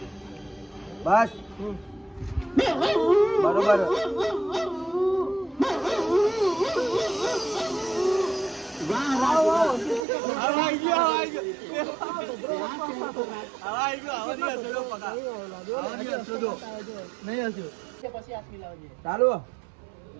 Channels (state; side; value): drops out; left; at 10.1 s